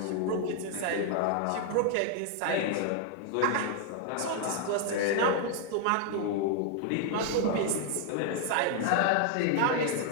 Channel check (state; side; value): different; both; correlation 0.00